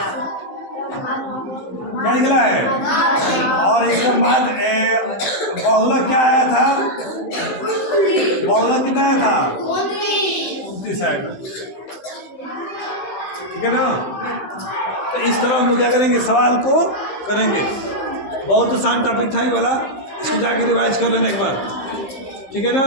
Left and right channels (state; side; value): late; right; 15 ms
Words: क्या निकला है? और इसके बाद बहुलक क्या आया था? बहुलक कितना आया था? 29 आएगा। ठीक है ना? तो इस तरह हम लोग क्या करेंगे? सवाल को करेंगे। बहुत आसान टॉपिक था ये वाला, इसको जाकर रिवाइज कर लेना एक बार। ठीक है ना?